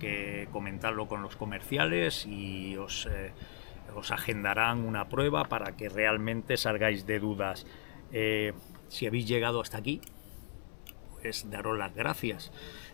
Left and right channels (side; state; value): right; silent; digital silence